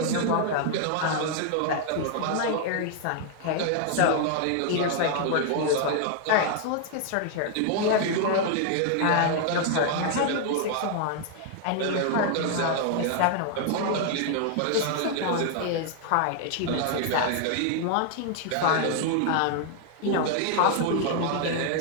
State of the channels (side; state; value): both; different; correlation 0.00